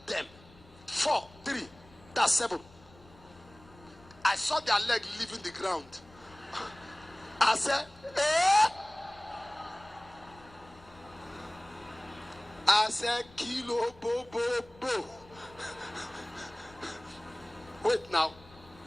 them. 4, 3, that's 7. I saw their leg leaving the ground. I said, eh? I said, kilo bo bo bo. Wait now.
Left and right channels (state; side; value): noise; left; rumble, 24 dB below the sound